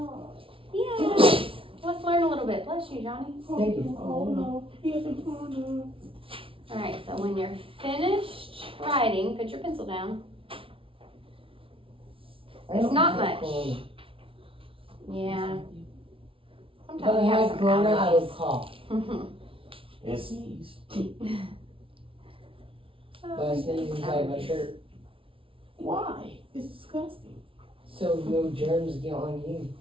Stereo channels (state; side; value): late; left; 0.26 ms